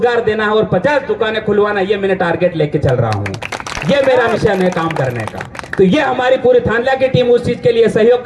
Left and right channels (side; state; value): both; identical; correlation 1.00